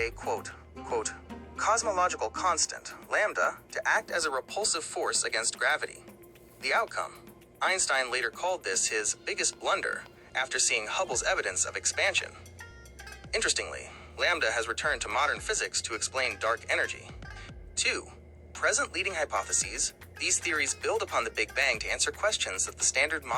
cosmological constant, lambda, to act as a repulsive force against gravity. The outcome: Einstein later called this his biggest blunder after seeing Hubble's evidence of expansion. Interestingly, lambda has returned to modern physics to explain dark energy. 2. Present leading hypotheses. These theories build upon the Big Bang to answer questions that the standard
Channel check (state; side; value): identical; both; correlation 1.00